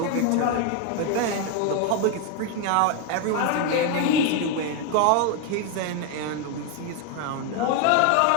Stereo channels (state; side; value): different; both; correlation 0.01